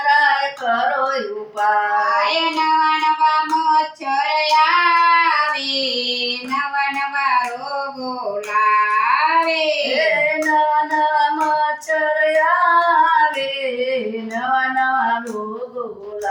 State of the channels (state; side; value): identical; both; correlation 1.00